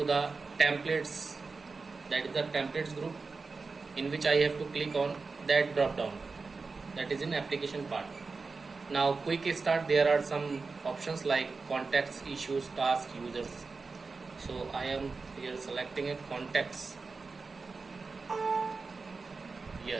the templates, that is the templates group, in which I have to click on that drop down, that is in application part. Now quick start, there are some options like contacts, issues, tasks, users. So I am here selecting a contacts.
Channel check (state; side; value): quieter; left; 4.3 dB